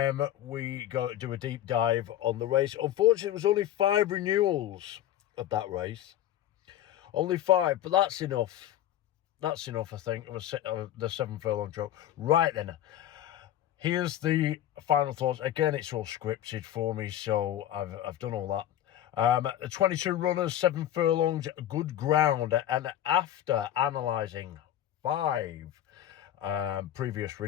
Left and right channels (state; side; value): quieter; right; 12.0 dB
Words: We go to do a deep dive on the race. Unfortunately, it was only 5 renewals of that race. Only 5, but that's enough. That's enough, I think, of the 7 furlong joke. Right then, here's the final thoughts. Again, it's all scripted for me, so I've done all that. 22 runners, 7 furlongs, good ground. And after analysing 5 previous